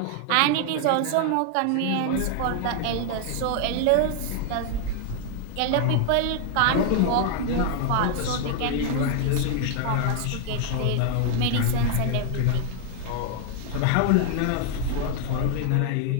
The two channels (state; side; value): different; both; correlation 0.00